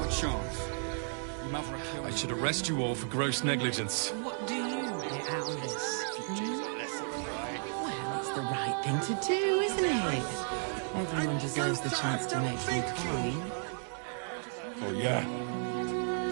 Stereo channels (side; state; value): left; silent; 55 dB below the other